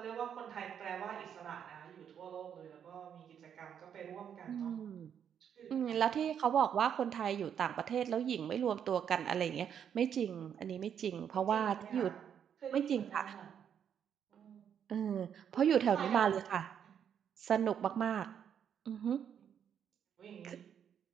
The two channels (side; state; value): left; quieter; 8.5 dB